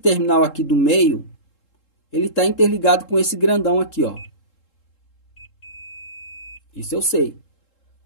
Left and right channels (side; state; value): right; late; 3.7 ms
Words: aqui do meio, ele está interligado com esse grandão aqui, ó. Isso eu sei.